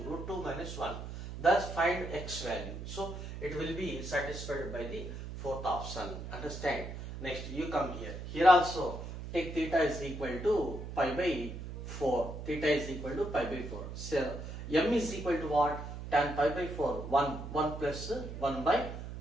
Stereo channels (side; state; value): right; noise; hum, 8 dB below the sound